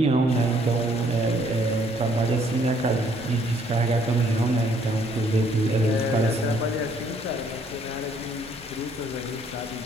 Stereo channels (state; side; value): normal; both; correlation 0.65